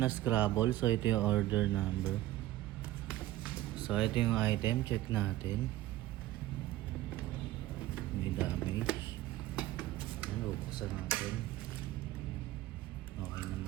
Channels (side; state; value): left; quieter; 15.3 dB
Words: Scrabble. So ito yung order number. So ito yung item, check natin. May damage. Yan, bubuksan natin. Okay